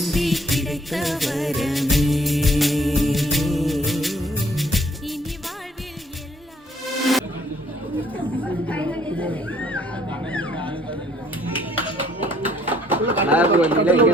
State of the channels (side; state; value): both; normal; correlation 0.63